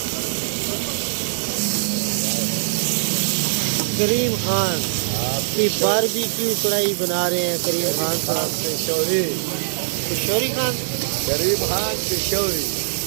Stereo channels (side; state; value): left; silent; digital silence